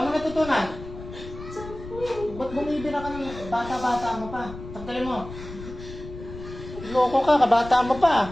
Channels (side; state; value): left; noise; rumble, 13 dB below the sound